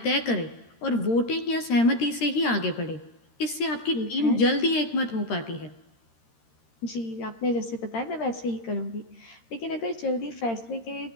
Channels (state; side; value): late; right; 13 ms